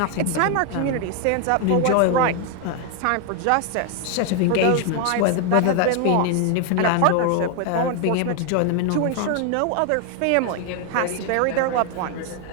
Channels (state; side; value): different; both; correlation 0.01